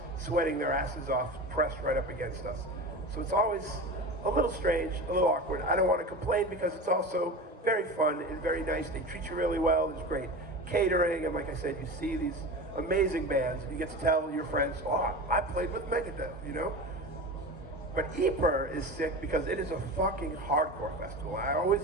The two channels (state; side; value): normal; both; correlation 0.29